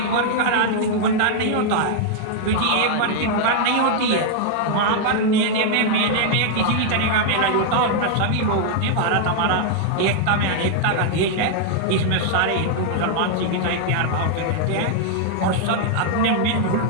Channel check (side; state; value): both; different; correlation 0.00